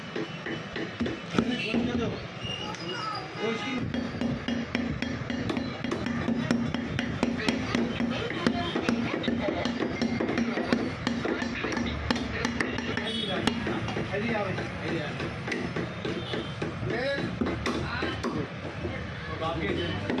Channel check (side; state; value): both; identical; correlation 1.00